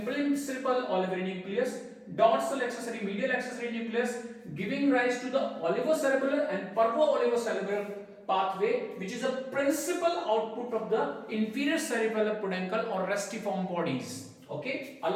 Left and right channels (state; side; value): identical; both; correlation 1.00